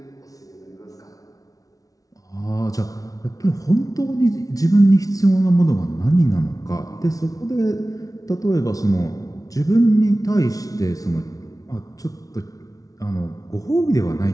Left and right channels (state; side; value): late; right; 0.18 ms